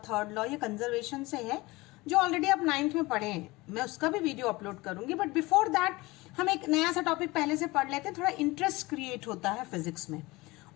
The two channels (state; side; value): quieter; right; 21.7 dB